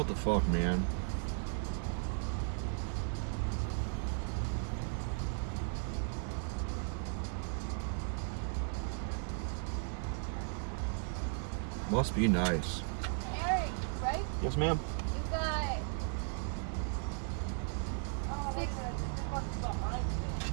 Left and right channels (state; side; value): silent; left; 54 dB below the other